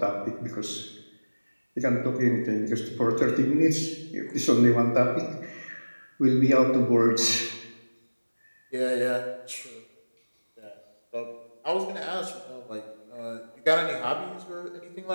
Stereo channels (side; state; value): both; inverted; correlation -1.00